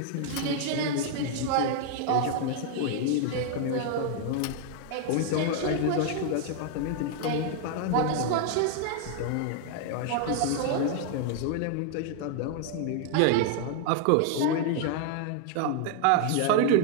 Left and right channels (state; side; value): different; both; correlation 0.00